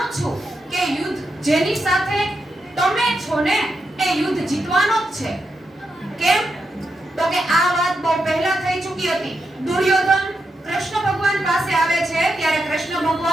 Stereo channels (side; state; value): both; normal; correlation 0.85